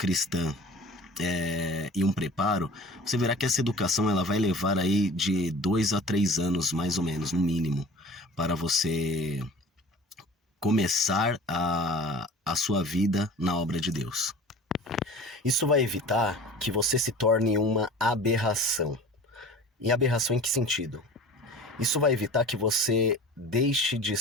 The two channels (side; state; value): both; normal; correlation 0.42